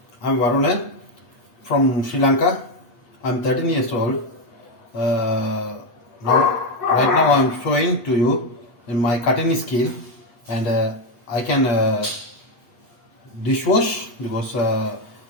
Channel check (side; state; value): right; late; 8.4 ms